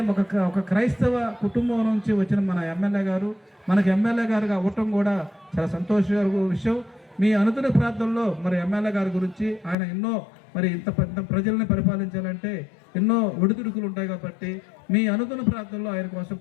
ఒక క్రైస్తవ కుటుంబం నుంచి వచ్చిన మన ఎమ్మెల్యే గారు మనకి ఎమ్మెల్యే గారుగా అవ్వటం కూడా చాలా సంతోషకర విషయం. మీ అనుదిన ప్రాంతంలో మరి ఎమ్మెల్యే గారి గురించి ఆయన ఎన్నో మరి ఇంత ప్రజల్ని పరిపాలించాలంటే ఎన్నో ఒడిదుడుకులు ఉంటాయి కాబట్టి మీ అనుదిన ప్రాంతంలో ఆయన కోసం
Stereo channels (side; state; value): right; drops out; at 9.8 s